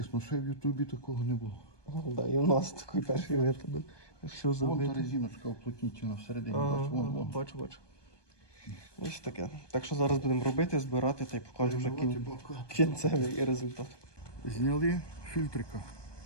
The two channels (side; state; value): right; late; 1.2 ms